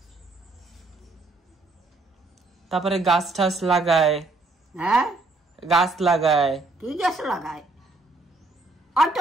তারপরে গাছ ঠাছ লাগায়। গাছ লাগায়। কি গাছ লাগায়? হয়তো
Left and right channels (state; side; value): quieter; left; 3.3 dB